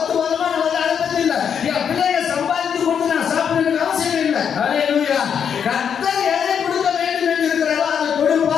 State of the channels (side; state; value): right; quieter; 7.6 dB